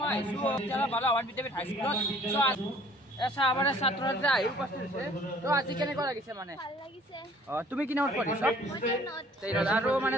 তেলা ভালো আৱান বিতে হাই স্কুলত। So এসা আমারে ছাত্ররা আই উপস্থিত আছে। তো আজি কেনে করা গিছে মানে? ভাল লাগিছে। তুমি কি নোট কৰিছ? মই নোট। আৰু মানে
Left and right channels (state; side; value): normal; both; correlation 0.55